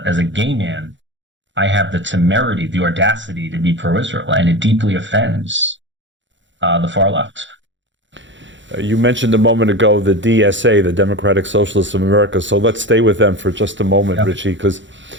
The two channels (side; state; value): left; late; 0.54 ms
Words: gay man, I have the temerity, the audacity to be pro-Israel, and it deeply offends the far left. You mentioned a moment ago the DSA, the Democratic Socialists of America, so let's stay with them for just a moment, Yeah. Ritchie, because